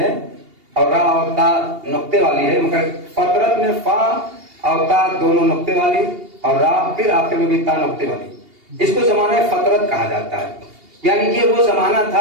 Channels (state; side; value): late; left; 2.8 ms